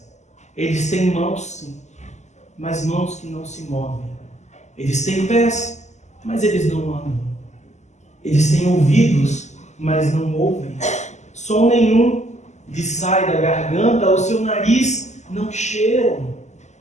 eles têm mãos sim, mas mãos que não se movem. Eles têm pés, mas eles não andam. Eles têm ouvidos, mas não ouvem. Som nenhum lhes sai da garganta, o seu nariz não cheiram.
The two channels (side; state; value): right; late; 0.33 ms